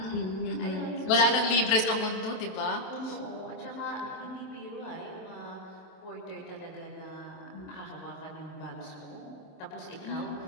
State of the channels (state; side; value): late; right; 27 ms